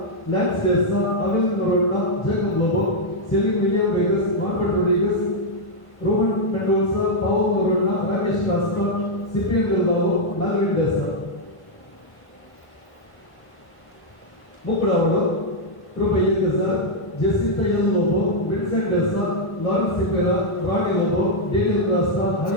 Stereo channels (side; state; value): right; late; 1.1 ms